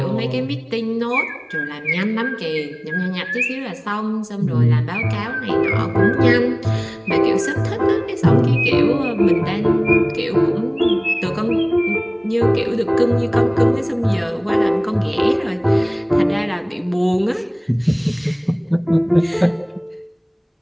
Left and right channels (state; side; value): identical; both; correlation 1.00